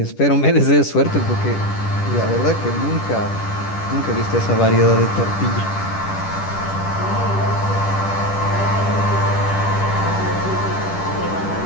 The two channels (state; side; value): late; right; 10 ms